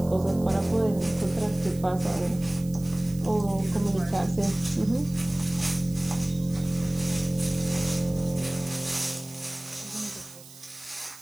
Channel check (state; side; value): noise; right; hiss, 19 dB below the sound